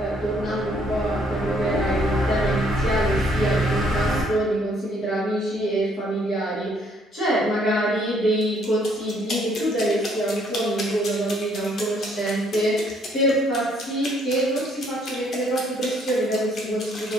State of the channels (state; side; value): normal; both; correlation 0.66